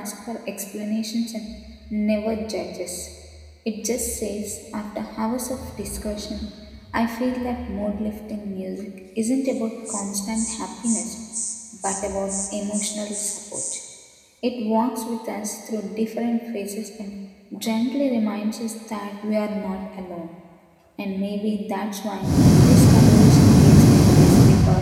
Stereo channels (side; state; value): both; identical; correlation 1.00